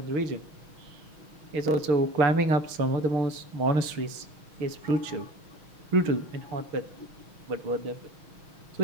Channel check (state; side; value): late; left; 6.3 ms